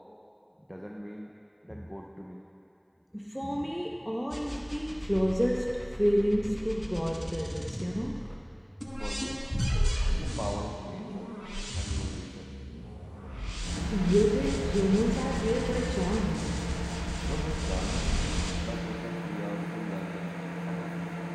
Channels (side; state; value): both; identical; correlation 1.00